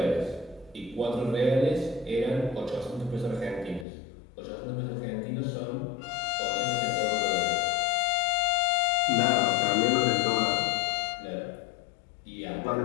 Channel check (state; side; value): drops out; right; at 3.9 s